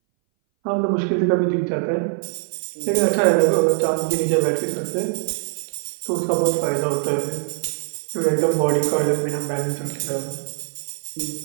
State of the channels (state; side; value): silent; left; 60 dB below the other